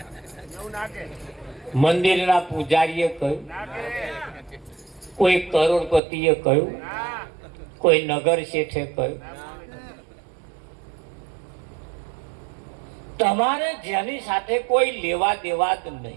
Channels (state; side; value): drops out; left; at 6.0 s